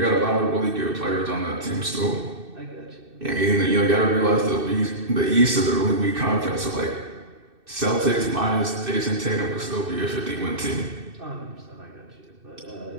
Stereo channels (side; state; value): left; late; 2.6 ms